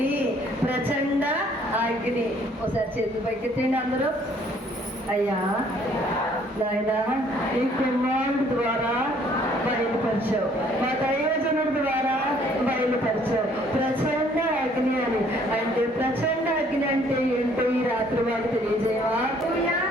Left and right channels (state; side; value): normal; both; correlation 0.61